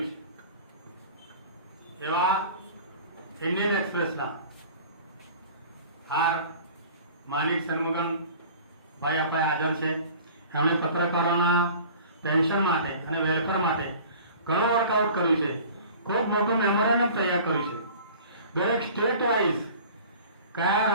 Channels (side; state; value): both; inverted; correlation -0.44